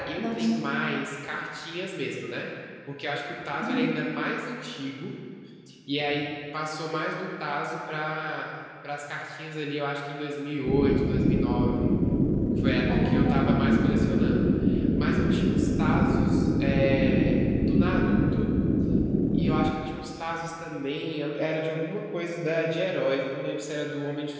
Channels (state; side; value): identical; both; correlation 1.00